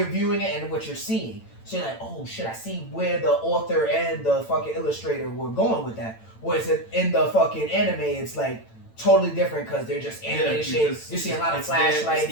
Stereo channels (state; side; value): late; right; 8.9 ms